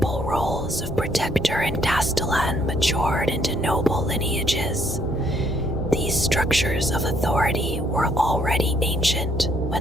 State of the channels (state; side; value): normal; both; correlation 0.68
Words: roles of protector and castellan matured into noble lineages. These structures of authority were already ancient